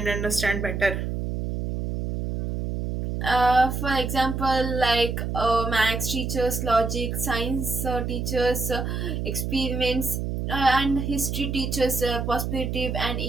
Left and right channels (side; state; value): right; noise; hum, 3 dB below the sound